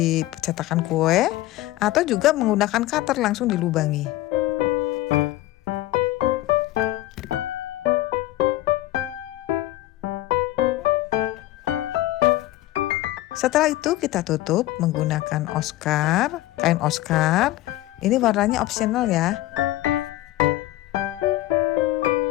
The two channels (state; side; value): quieter; right; 16.1 dB